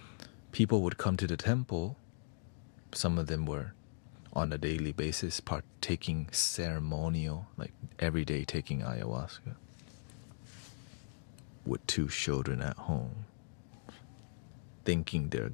people would come to the temple. Some of them were on a daily basis partaking ceremonial, like every day taking ayahuasca with 2 children at home, thinking they're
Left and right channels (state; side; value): silent; right; digital silence